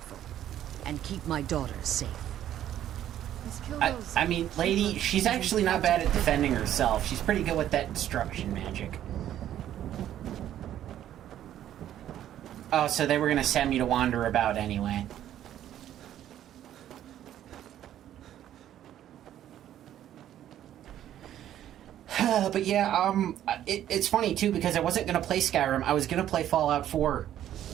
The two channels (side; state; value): left; quieter; 11.6 dB